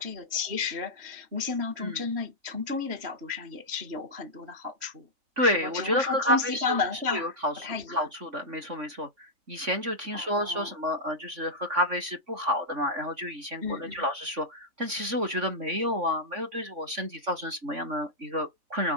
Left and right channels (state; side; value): late; left; 3.5 ms